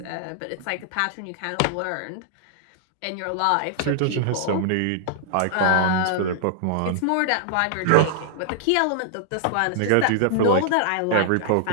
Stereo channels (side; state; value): both; different; correlation -0.01